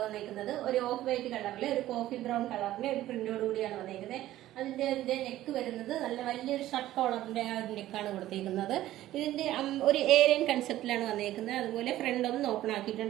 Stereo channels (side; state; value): left; quieter; 14.4 dB